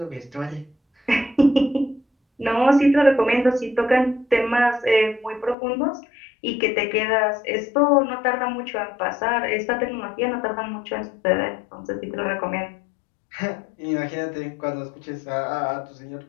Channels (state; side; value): drops out; right; at 5.6 s